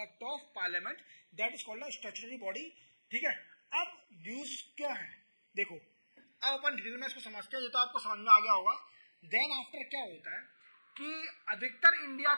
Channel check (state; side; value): inverted; both; correlation -1.00